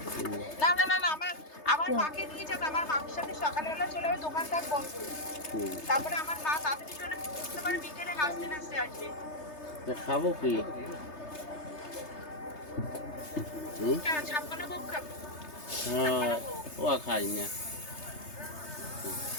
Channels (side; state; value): right; late; 3.3 ms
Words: না না না না, আমার মাকে নিয়ে যাবে। আমার মার সাথে সকালবেলা চলে যাবে, দোকান থাকবো। তারপরে আমার মা তাড়াতাড়ি চলে আসতে পারে, বিকেলে নাচতে নাচতে আসবে। খাবো কি? ছাপ্পান্ন ভোগ খাবো। হ্যাঁ ও খাই না